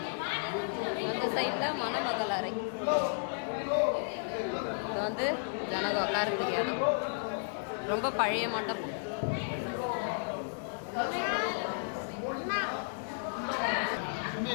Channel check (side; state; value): right; silent; digital silence